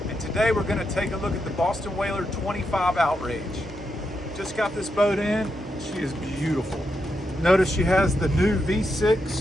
and today we're going to take a look at the Boston Whaler 25 Outrage. Just got this boat in. She is beautiful. Notice she has the new V6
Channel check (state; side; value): normal; both; correlation 0.84